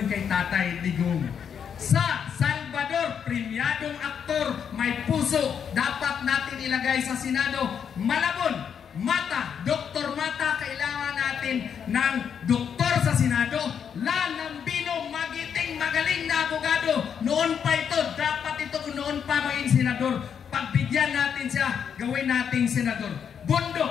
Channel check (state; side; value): quieter; right; 7.6 dB